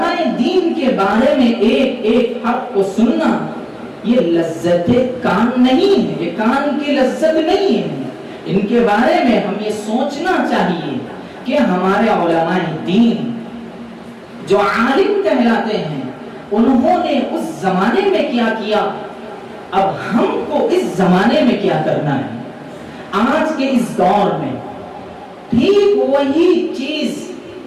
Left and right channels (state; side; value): identical; both; correlation 1.00